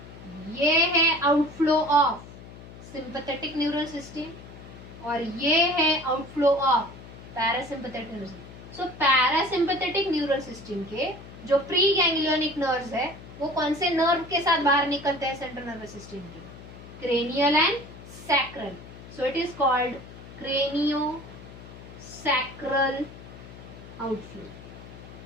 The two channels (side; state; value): left; noise; hum, 16 dB below the sound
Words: ये है outflow of sympathetic neural system और ये है outflow of parasympathetic neural system. So parasympathetic neural system के जो प्री गैंग्लियोनिक नर्व्स है वो कौन से नर्व के साथ बाहर निकलते हैं सेंट्रल नर्वस सिस्टम के? Cranial and sacral. So it is called cranio sacral outflow.